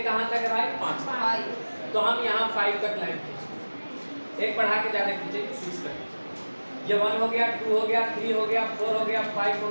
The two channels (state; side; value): inverted; both; correlation -1.00